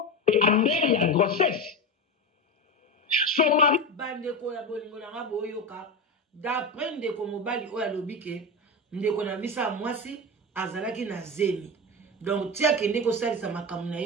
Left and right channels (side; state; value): both; normal; correlation 0.20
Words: et en l'air, il y a une grossesse. Son mari. Bandeko ya bolingo na boyoka d'après ndeko mobali oya lobike ndeko na bisa mwasi azalaki na zemi donc tia kende ko salisa makamu na